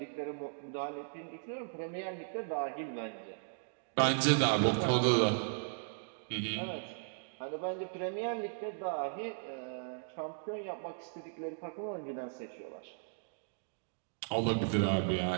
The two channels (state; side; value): silent; left; digital silence